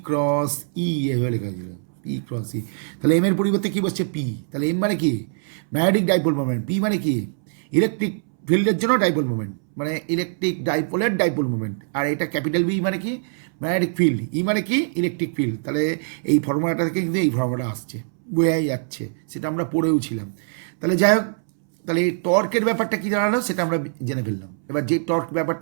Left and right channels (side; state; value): left; silent; 63 dB below the other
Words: ক্রস ই, এভাবে লেখা ছিল পি ক্রস ই। তাহলে এম এর পরিবর্তে কী বসছে, পি। তাহলে এম মানে কি, ম্যাগনেটিক ডাইপোল মোমেন্ট, পি মানে কি, ইলেকট্রিক ফিল্ডের জন্য ডাইপোল মোমেন্ট, মানে ইলেকট্রিক ডাইপোলের ডাইপোল মোমেন্ট। আর এটা ক্যাপিটাল বি মানে কি, ম্যাগনেটিক ফিল্ড, ই মানে কি, ইলেকট্রিক ফিল্ড। তাহলে এই ফর্মুলাটা থেকে কিন্তু এই ফর্মুলাটা আসছে, বোঝাই যাচ্ছে, সেটা আমরা পড়েও ছিলাম। তাহলে যাই হোক, তাহলে এই টর্কের ব্যাপারটা কী দাঁড়ালো সেটা আমরা জেনে ফেললাম। এবার যে টর্ক